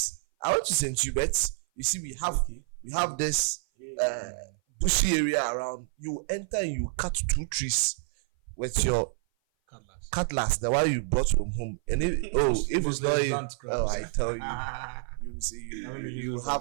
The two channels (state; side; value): silent; left; 56 dB below the other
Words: I want to send you, but you see, we have this bushy area around. You enter and you cut 2 trees with your cutlass, the one you brought from home. And if it's not I tell you, you see, you